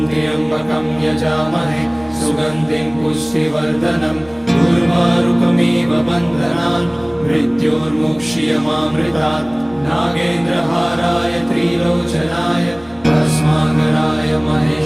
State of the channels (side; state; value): left; noise; hum, 27 dB below the sound